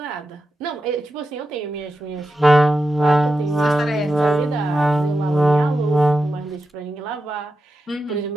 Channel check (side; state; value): both; normal; correlation 0.89